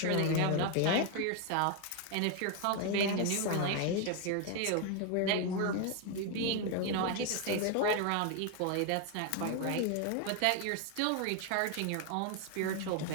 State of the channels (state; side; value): different; both; correlation 0.01